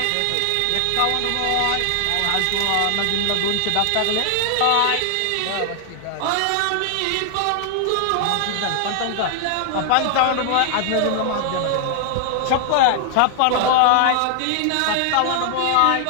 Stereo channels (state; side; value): different; both; correlation 0.00